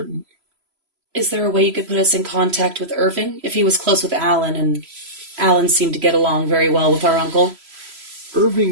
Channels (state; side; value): late; left; 3.0 ms